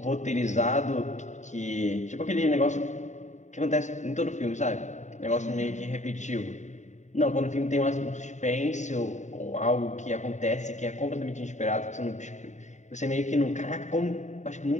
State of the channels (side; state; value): right; late; 0.34 ms